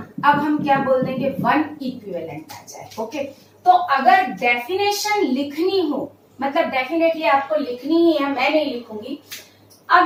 अब हम क्या बोल देंगे, 1 इक्विवेलेंट आ जाए। ओके, तो अगर डेफिनेशन लिखनी हो, मतलब डेफिनेटली आपको लिखनी ही है, मैं नहीं लिखूंगी।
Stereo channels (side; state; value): both; identical; correlation 1.00